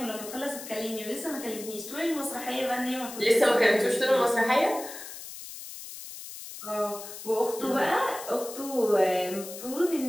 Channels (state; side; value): noise; left; hiss, 12 dB below the sound